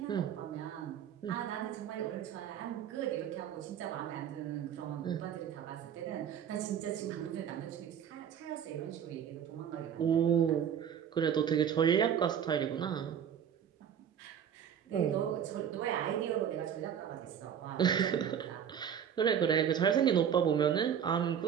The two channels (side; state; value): left; quieter; 8.6 dB